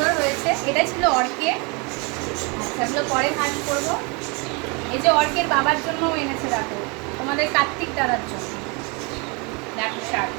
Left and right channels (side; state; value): left; quieter; 31.0 dB